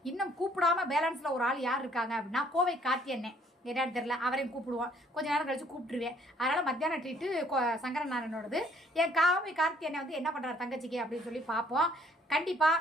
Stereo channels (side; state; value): both; normal; correlation 0.62